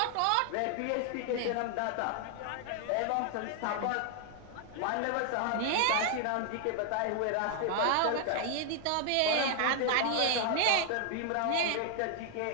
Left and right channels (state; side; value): different; both; correlation 0.00